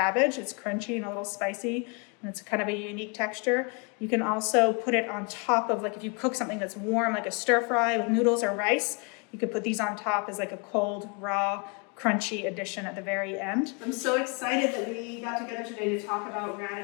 It's crunchy and a little spicy, and it's kind of a unique texture. You can also put it on top of, like if you cook something that's warm, like a stir fry with noodles or rice, you could put these on top as like a cold, raw, crunchy addition at the very end. I'm so excited that we got together today to talk about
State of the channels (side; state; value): right; quieter; 33.2 dB